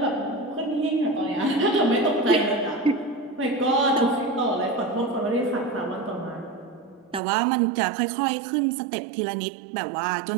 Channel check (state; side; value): drops out; left; at 7.2 s